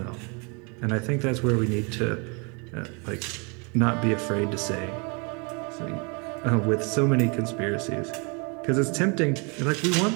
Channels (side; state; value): left; quieter; 33.1 dB